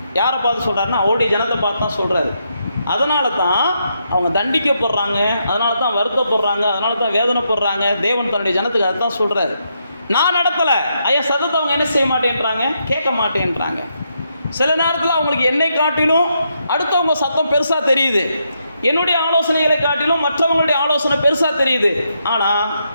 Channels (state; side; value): inverted; both; correlation -0.79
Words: யாரை பார்த்து சொல்கிறாருன்னா, அவருடைய ஜனத்தை பார்த்து தான் சொல்கிறாரு. அதனால தான் அவங்க தண்டிக்கப்படுறாங்க, அதனால தான் வருத்தப்படுறாங்க, அதனால தான் வேதனைப்படுறாங்க. தேவன் தன்னுடைய ஜனத்துக்கு அதை தான் சொல்கிறாரு. நான் நடத்தலை, ஐயா சத்தத்தை அவங்க என்ன செய்ய மாட்டேன்றாங்க, கேட்க மாட்டேன்றாங்க. சில நேரத்தில் அவங்களுக்கு என்னை காட்டிலும் அடுத்தவங்க சத்தம் பெருசாக தெரியுது. என்னுடைய ஆலோசனைகளை காட்டிலும் மற்றவங்களுடைய ஆலோசனை பெருசாக தெரியுது. ஆனால்